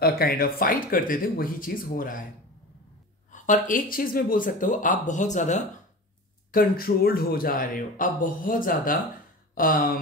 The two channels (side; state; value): both; normal; correlation 0.32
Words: काइंड ऑफ फाइट करते थे, वही चीज हो रहा है। और एक चीज मैं बोल सकता हूं, आप बहुत ज्यादा कंट्रोल्ड हो जा रहे हो, आप बहुत ज्यादा